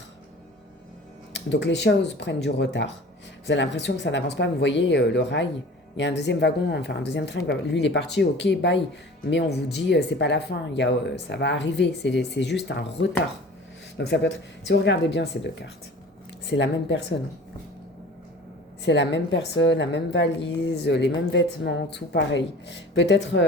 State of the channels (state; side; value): normal; both; correlation 0.43